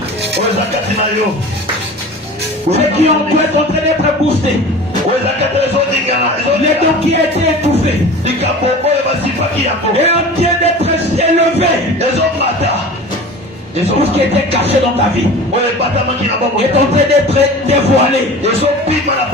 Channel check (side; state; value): both; normal; correlation 0.37